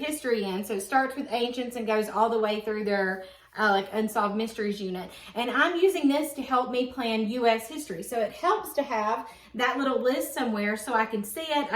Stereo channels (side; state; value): both; identical; correlation 1.00